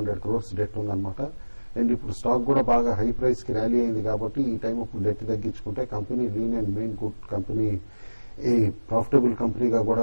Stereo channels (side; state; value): both; inverted; correlation -1.00